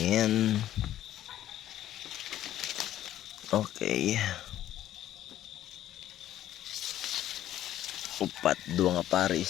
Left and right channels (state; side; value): quieter; right; 12.6 dB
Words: Okay. Upat dua nga